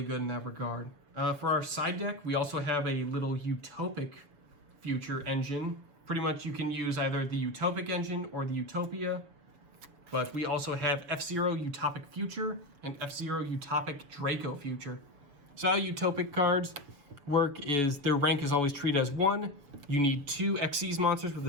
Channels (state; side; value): late; left; 7.0 ms